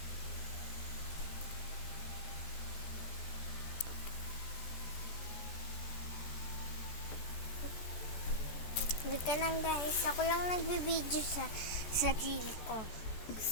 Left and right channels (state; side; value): late; right; 14 ms